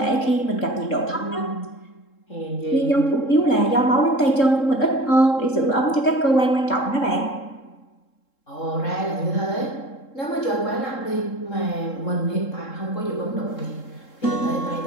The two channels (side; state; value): right; late; 3.7 ms